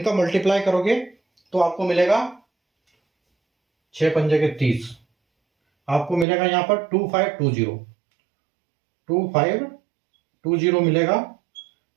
मल्टीप्लाई करोगे तो आपको मिलेगा 6 पंजे के 30, आपको मिलेगा यहां पर 2520 मिलेगा।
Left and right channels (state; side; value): drops out; left; at 6.2 s